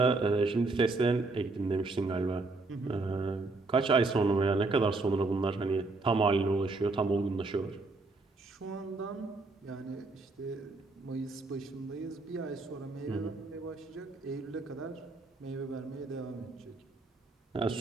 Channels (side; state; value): left; quieter; 3.5 dB